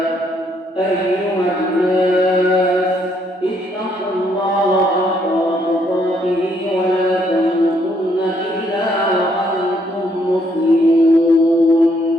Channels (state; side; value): normal; both; correlation 0.71